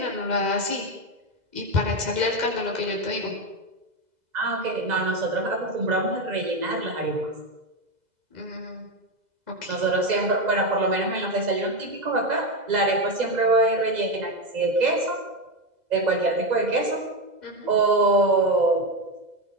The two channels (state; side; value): late; left; 2.0 ms